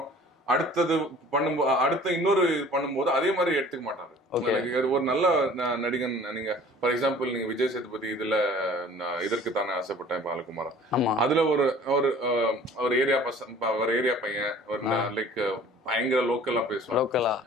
அடுத்த இன்னொரு பண்ணும்போது அதே மாதிரி எடுத்துக்க மாட்டாரு. ஒரு நல்ல நடிகன், நீங்க ஃபார் எக்ஸாம்பிள் நீங்க விஜய் சேதுபதி இதுல இதற்கு தானே ஆசைப்பட்டேன் பாலகுமாரன், அதுல ஒரு ஏரியா பையன், ஒரு லைக் பயங்கர லோக்கலா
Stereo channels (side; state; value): both; normal; correlation 0.49